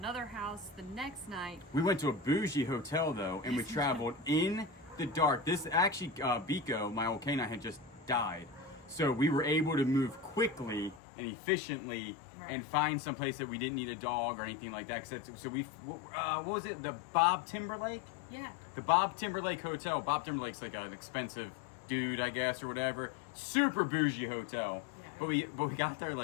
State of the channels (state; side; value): drops out; right; at 11.0 s